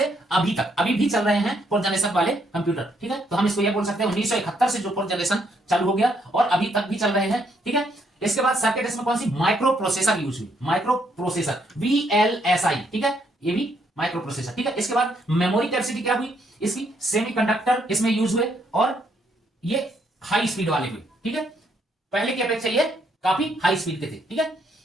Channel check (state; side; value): normal; both; correlation 0.72